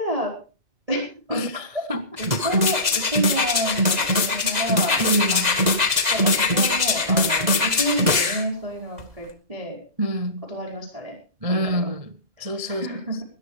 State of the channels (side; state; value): left; late; 2.0 ms